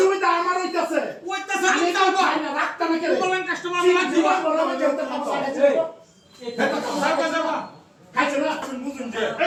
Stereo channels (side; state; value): both; identical; correlation 1.00